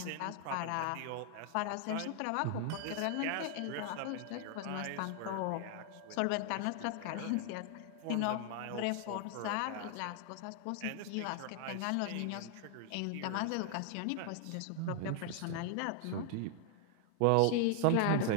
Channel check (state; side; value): different; both; correlation 0.00